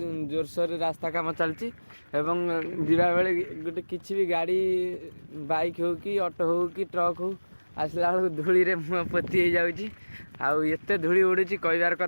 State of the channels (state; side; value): inverted; both; correlation -1.00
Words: जोरसोर रास्ता काम चलती एवं जीवा बेले गोटे किसी भी गाड़ी बाइक हो कि ऑटो हो कि ट्रक हो आसला बेलू धूली रे मुँह पोती हो जाऊँगी। आते धूली उड़ूची कहबार